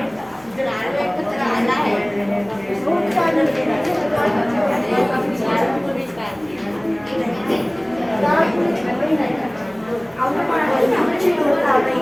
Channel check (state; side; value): noise; left; hum, 29 dB below the sound